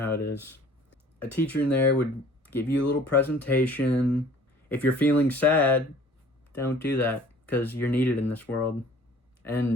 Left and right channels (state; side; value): normal; both; correlation 0.51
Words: how it is. A teacher in there would give you a little presentation. If you're feeling sad, don't do that because you're needed in this world.